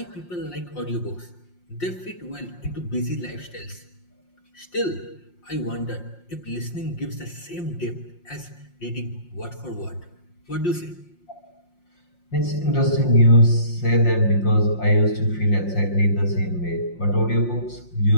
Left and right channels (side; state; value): right; late; 5.6 ms